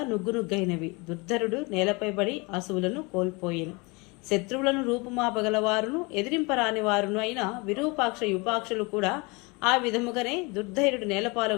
నుగ్గునుగ్గైనవి. దుర్ధరుడు నేలపై పడి అసువులను కోల్పోయెను. శత్రువులను రూపుమాపగలవారును ఎదిరింపరాని వారును అయిన విరూపాక్ష యుపాక్షులు కూడా ఆ విధముగానే దుర్ధైర్యుడు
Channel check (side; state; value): right; quieter; 27.5 dB